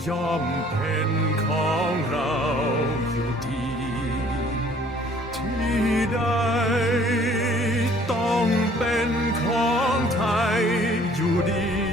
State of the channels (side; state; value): both; normal; correlation 0.56